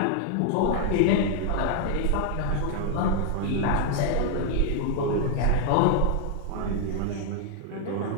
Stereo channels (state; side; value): different; both; correlation 0.00